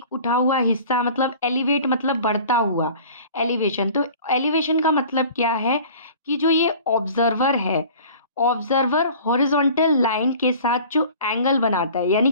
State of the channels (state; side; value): inverted; both; correlation -0.45